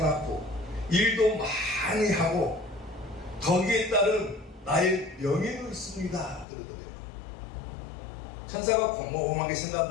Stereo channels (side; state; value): right; drops out; at 6.5 s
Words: 일도 많이 하고 거기에 따른 나의 명예도 있습니다 그러더래요. 천사가 곰곰하게